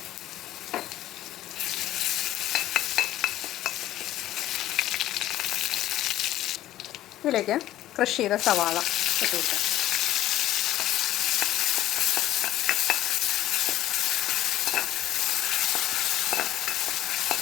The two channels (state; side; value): quieter; right; 14.0 dB